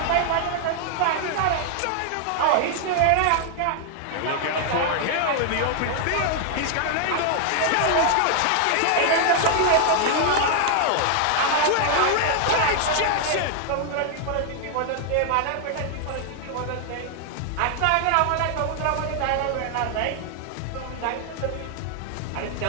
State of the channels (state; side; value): different; both; correlation 0.00